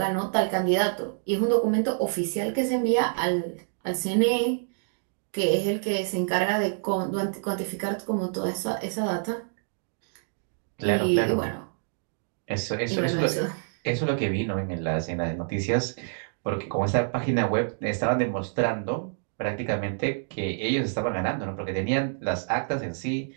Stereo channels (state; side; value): silent; left; digital silence